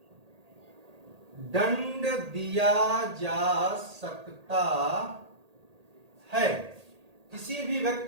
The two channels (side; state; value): left; late; 1.8 ms